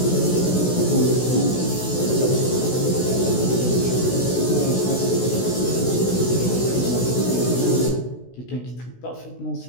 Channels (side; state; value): right; late; 16 ms